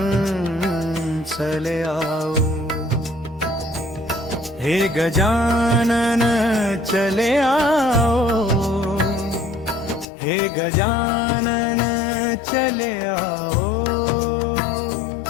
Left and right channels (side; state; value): right; drops out; at 10.1 s